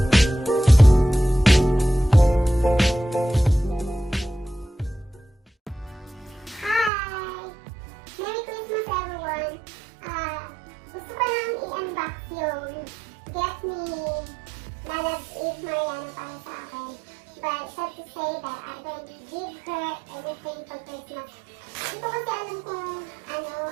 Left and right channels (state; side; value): drops out; left; at 6.9 s